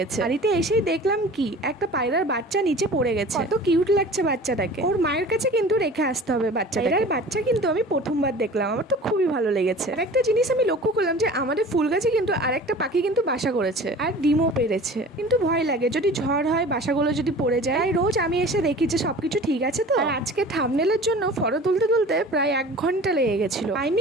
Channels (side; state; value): both; normal; correlation 0.42